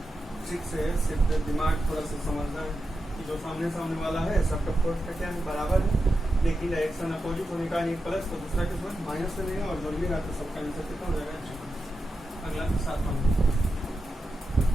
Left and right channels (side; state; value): both; normal; correlation 0.89